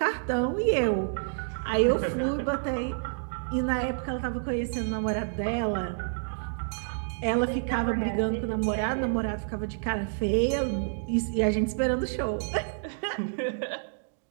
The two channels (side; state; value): left; silent; digital silence